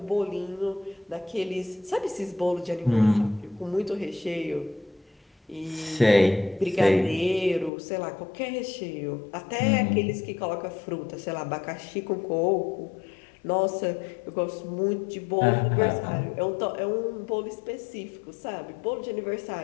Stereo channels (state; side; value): drops out; right; at 7.7 s